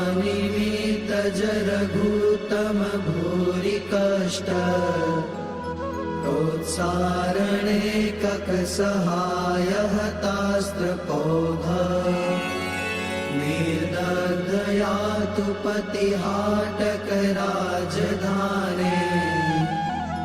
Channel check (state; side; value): identical; both; correlation 1.00